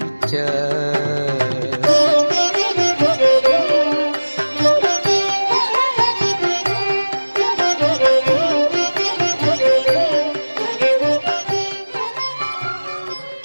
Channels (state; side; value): inverted; both; correlation -1.00